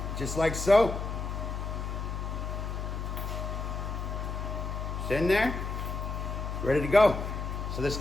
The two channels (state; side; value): noise; left; hum, 4 dB below the sound